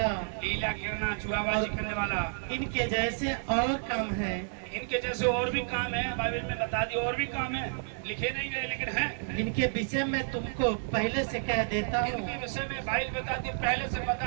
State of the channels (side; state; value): left; silent; digital silence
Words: जुआबाजी करने वाला। इनके जैसे और काम है। इनके जैसे और भी काम है, बाइबल में बता दी, और भी काम है, लिखे नहीं गए लेकिन हैं। इनके विषय में तुमको पहले से कह देता हूँ, इनके विषय में बाइबल बताती, पहले से